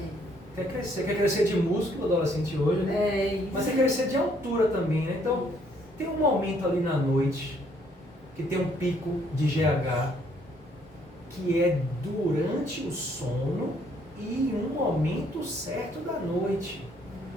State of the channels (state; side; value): normal; both; correlation 0.66